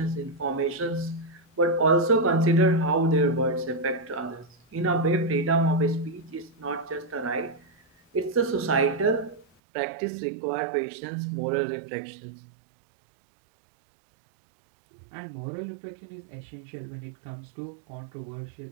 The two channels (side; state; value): left; drops out; at 9.5 s